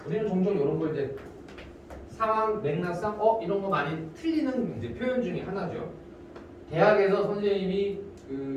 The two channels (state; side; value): identical; both; correlation 1.00